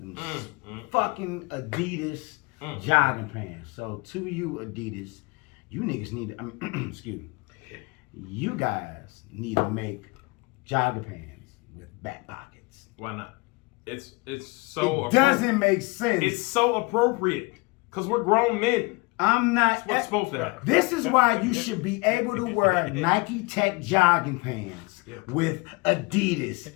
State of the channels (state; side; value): quieter; right; 26.7 dB